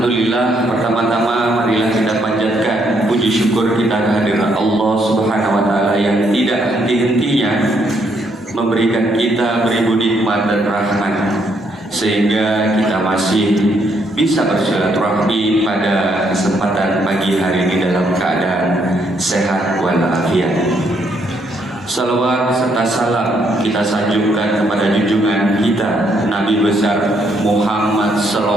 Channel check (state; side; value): normal; both; correlation 0.73